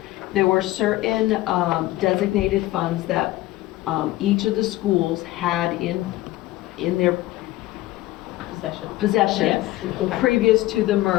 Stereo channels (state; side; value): quieter; right; 17.1 dB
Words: there were certain designated funds that each of the schools had in their possession Yes. previous to the